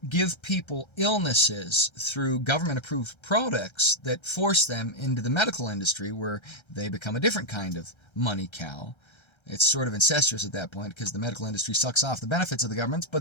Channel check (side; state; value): right; late; 1.3 ms